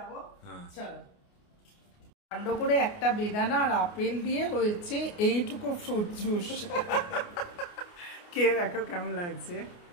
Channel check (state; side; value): late; right; 29 ms